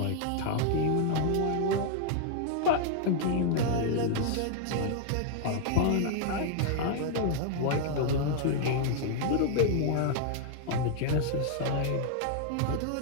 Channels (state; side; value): different; both; correlation 0.00